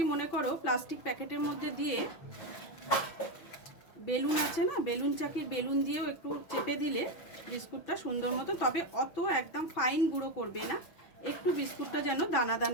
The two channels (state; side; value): late; right; 6.0 ms